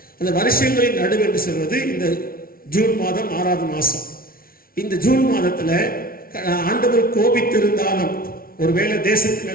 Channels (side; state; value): right; late; 0.43 ms